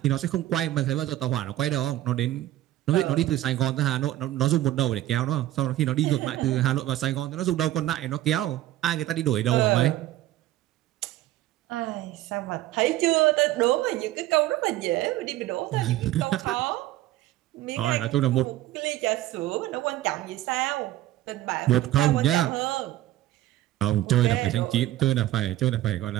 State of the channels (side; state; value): left; quieter; 14.7 dB